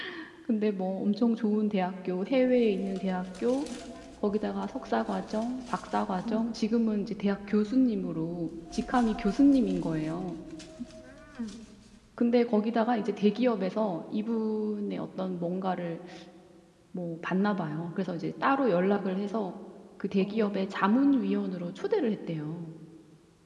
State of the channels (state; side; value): identical; both; correlation 1.00